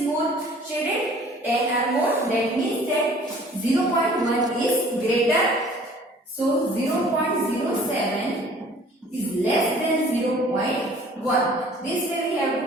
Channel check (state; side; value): normal; both; correlation 0.52